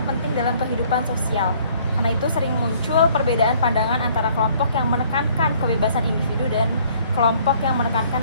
penting dalam kehidupan sosial. Karena itu sering muncul perbedaan pandangan antara kelompok yang menekankan kebebasan individu dan kelompok yang menekankan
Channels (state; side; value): inverted; both; correlation -0.60